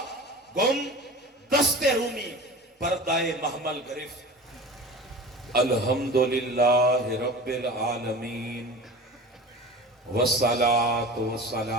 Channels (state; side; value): normal; both; correlation 0.35